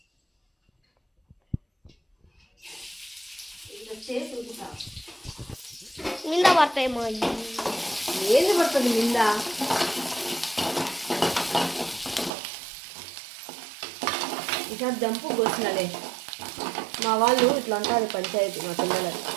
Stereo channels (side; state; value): left; drops out; at 12.3 s